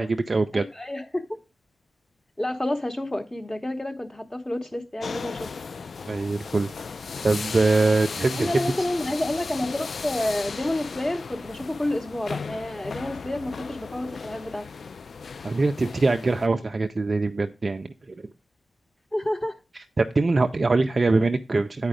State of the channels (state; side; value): normal; both; correlation 0.96